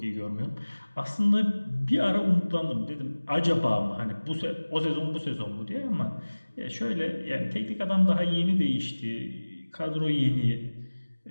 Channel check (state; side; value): inverted; both; correlation -1.00